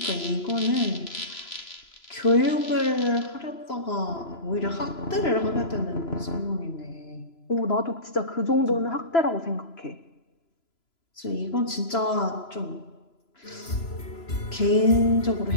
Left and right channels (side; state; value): right; late; 3.0 ms